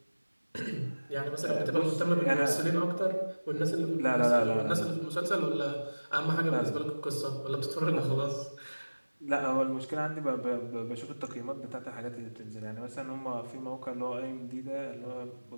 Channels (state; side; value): inverted; both; correlation -1.00